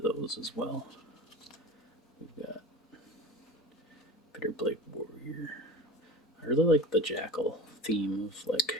those as well. We've got Bitterblade Warrior. I really like the Jackal theme of like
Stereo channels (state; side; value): normal; both; correlation 0.33